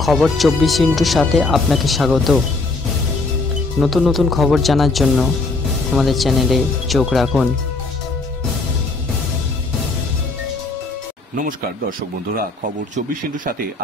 খবর 24 সাথে আপনাকে স্বাগত। নতুন নতুন খবর জানার জন্য আমাদের চ্যানেলে চোখ রাখুন। নমস্কার দর্শক বন্ধুরা, খবর 24 সাথে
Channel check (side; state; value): right; quieter; 3.4 dB